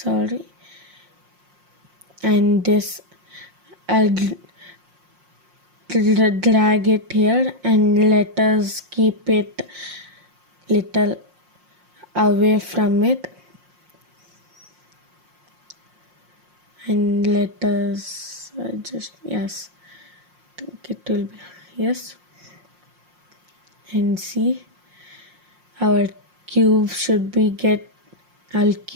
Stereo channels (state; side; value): late; left; 5.6 ms